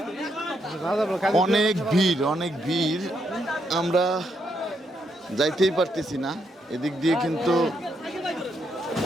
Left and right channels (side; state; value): both; normal; correlation 0.78